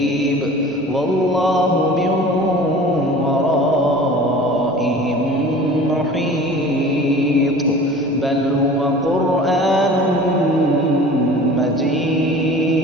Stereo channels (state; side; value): normal; both; correlation 0.42